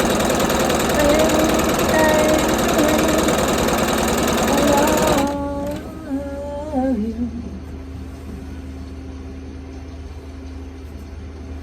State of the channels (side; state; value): both; identical; correlation 1.00